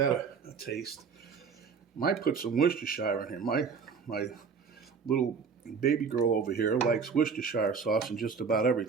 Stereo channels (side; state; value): left; quieter; 5.7 dB